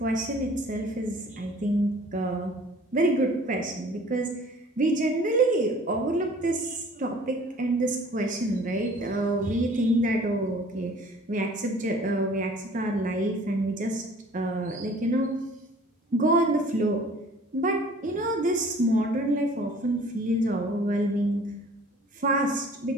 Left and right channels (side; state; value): both; normal; correlation 0.50